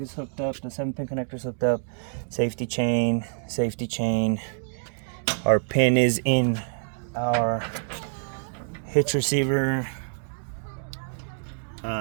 hooked up, the 7-pin connector is hooked up, safety chain. Our pin is in our hitch receiver.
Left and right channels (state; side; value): silent; left; digital silence